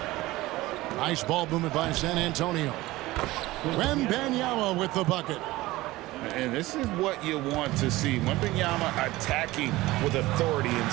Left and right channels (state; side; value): quieter; left; 18.7 dB